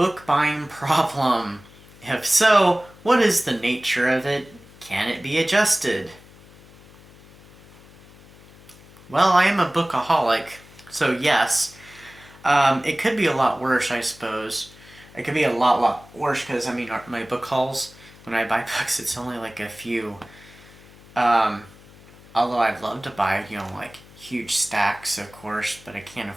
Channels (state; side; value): noise; left; hum, 23 dB below the sound